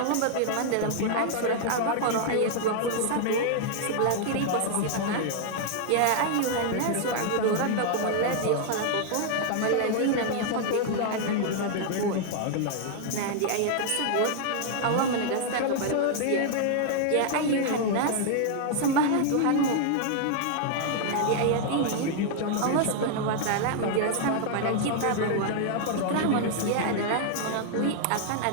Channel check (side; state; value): both; different; correlation 0.00